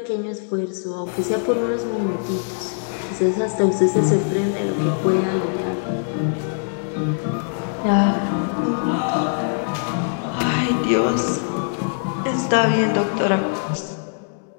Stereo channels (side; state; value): right; silent; digital silence